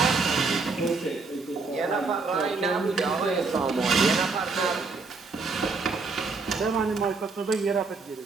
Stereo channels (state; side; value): quieter; left; 4.2 dB